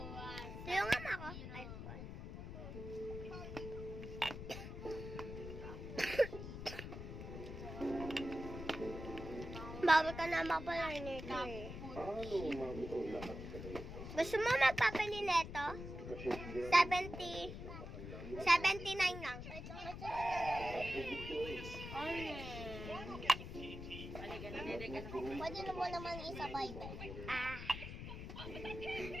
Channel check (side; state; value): left; noise; rumble, 8 dB below the sound